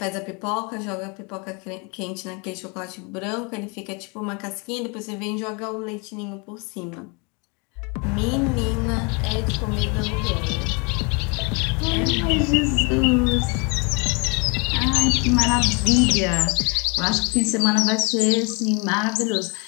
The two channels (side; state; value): right; quieter; 32.0 dB